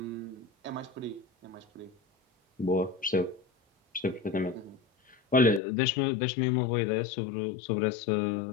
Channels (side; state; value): right; drops out; at 5.6 s